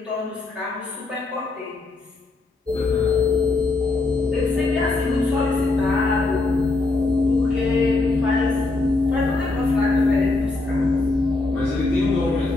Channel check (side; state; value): right; quieter; 3.3 dB